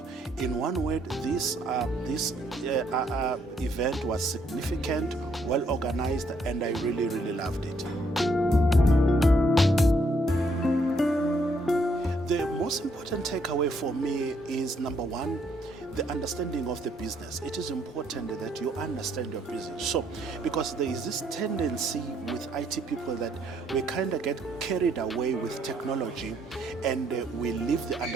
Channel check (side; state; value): both; normal; correlation 0.70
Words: in one word, this event was significant, well organized, and I really, really loved it. The most important takeaway for me is, number one, the understanding of the business. It is important that you understand your business. So, because there is this tendency with IT people that we kind of get carried away with technology and we leave the